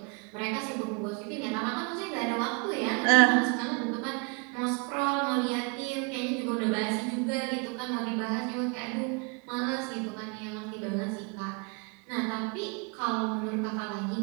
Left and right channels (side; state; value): left; quieter; 33.3 dB